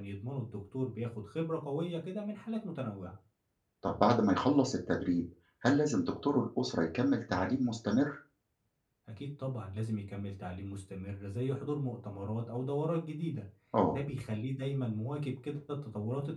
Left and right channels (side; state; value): both; identical; correlation 1.00